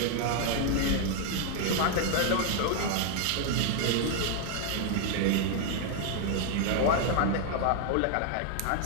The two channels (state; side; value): different; both; correlation 0.00